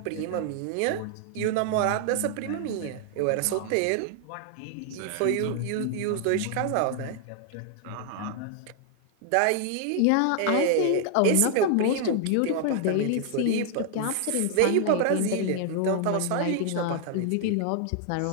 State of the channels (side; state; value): both; different; correlation 0.00